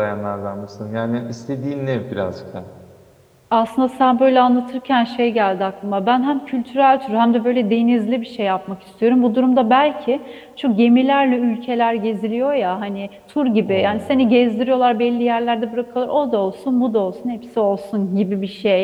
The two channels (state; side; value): identical; both; correlation 1.00